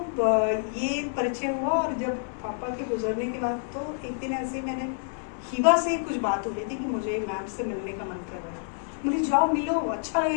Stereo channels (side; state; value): right; silent; digital silence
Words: ये परिचय हुआ, और जब पापा के गुजरने के बाद तो एक दिन ऐसे मैंने हीबा से कुछ बात हो रही थी कि मुझे मैम से मिलने का मन कर रहा है, मुझे जाओ मिलो, अच्छा